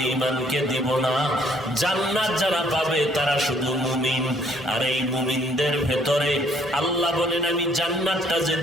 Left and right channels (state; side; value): normal; both; correlation 0.63